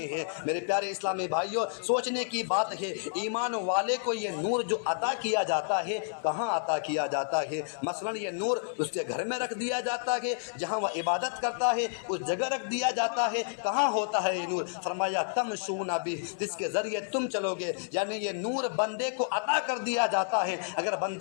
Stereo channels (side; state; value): right; silent; 58 dB below the other